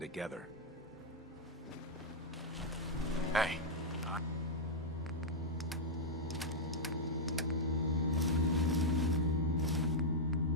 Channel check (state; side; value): normal; both; correlation -0.06